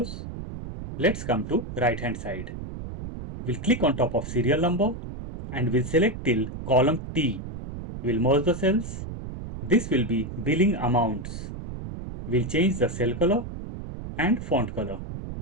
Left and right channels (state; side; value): noise; right; rumble, 9 dB below the sound